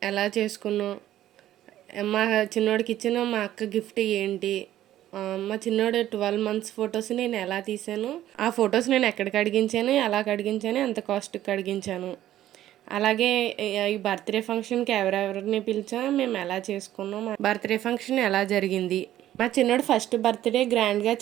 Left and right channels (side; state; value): left; quieter; 13.0 dB